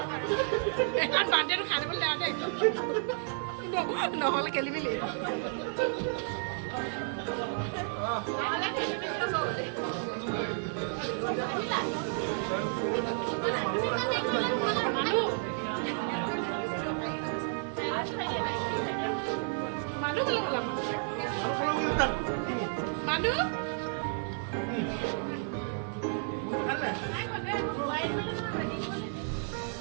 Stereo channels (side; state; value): left; silent; 57 dB below the other